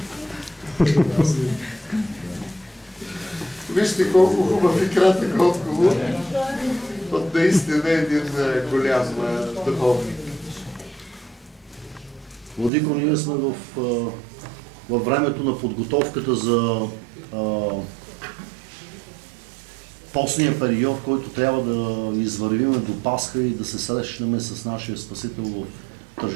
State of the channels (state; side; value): drops out; left; at 12.7 s